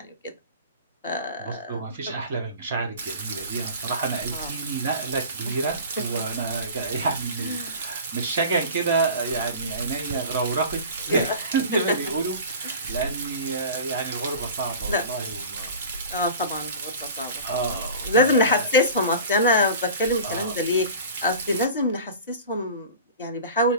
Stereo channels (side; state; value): both; inverted; correlation -0.38